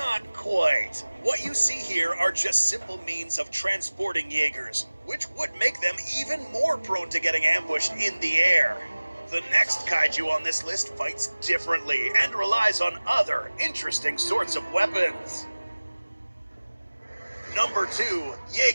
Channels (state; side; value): inverted; both; correlation -1.00